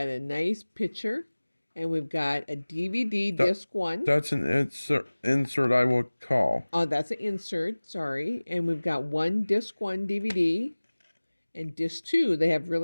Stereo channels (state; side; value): inverted; both; correlation -1.00